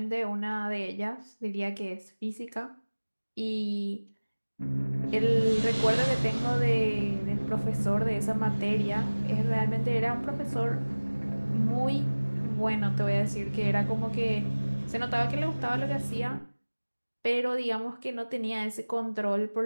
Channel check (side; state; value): both; inverted; correlation -1.00